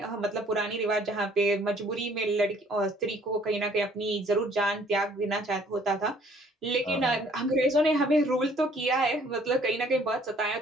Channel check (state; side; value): normal; both; correlation 0.59